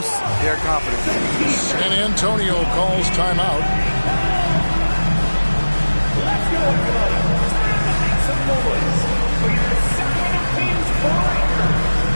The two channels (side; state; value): both; inverted; correlation -1.00